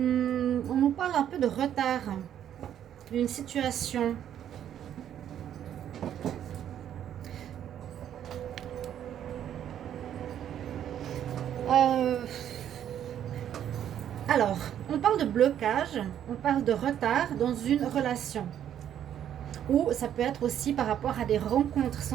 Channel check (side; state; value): left; quieter; 10.2 dB